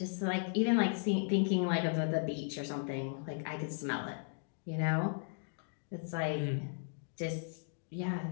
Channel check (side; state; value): right; silent; digital silence